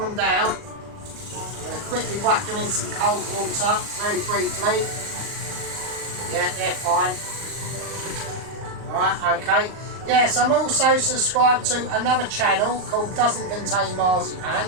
down. I'm going to quickly whack them in some cold water very briefly. Yeah, they're fine. Right, okay. Yes, I'm also subscribed to another channel called Doesn't Contain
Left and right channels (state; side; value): late; left; 38 ms